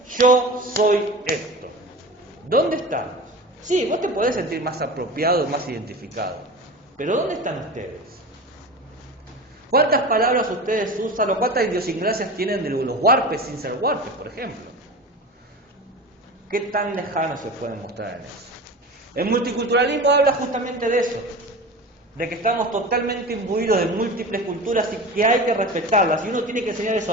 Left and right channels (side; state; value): both; normal; correlation 0.32